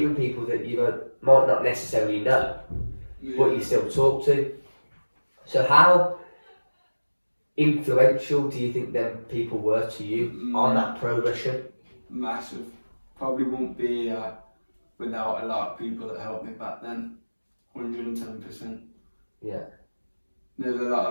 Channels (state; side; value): inverted; both; correlation -1.00